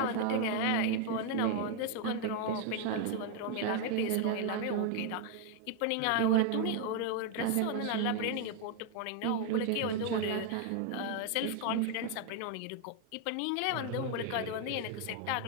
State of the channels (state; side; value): different; both; correlation 0.00